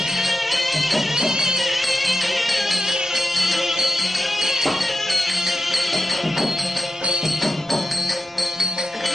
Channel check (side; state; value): both; normal; correlation 0.91